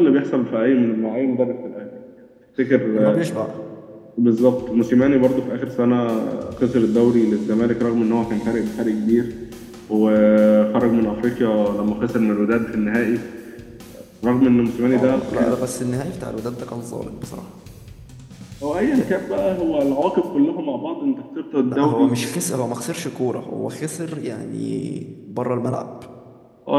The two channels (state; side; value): identical; both; correlation 1.00